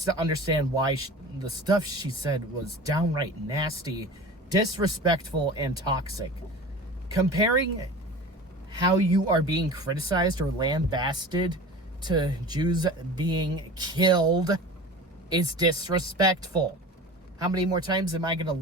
to understand why the stuff she said was downright nasty, disrespectful, and toxic. Comparing how you are being criticized or lambasted to Jews being killed is disrespectful. How many more times am I going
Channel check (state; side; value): normal; both; correlation 0.36